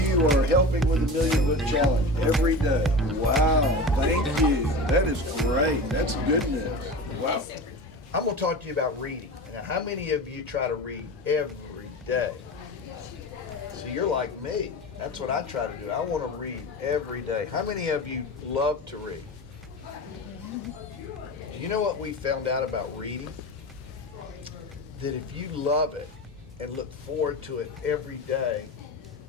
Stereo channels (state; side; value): normal; both; correlation 0.29